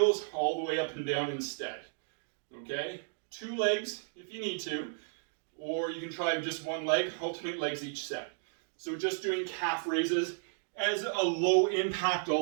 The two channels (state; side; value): silent; left; digital silence